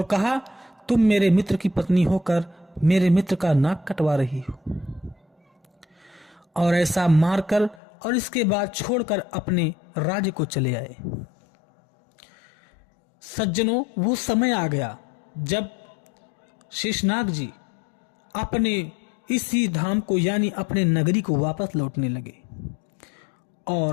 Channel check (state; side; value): drops out; right; at 7.8 s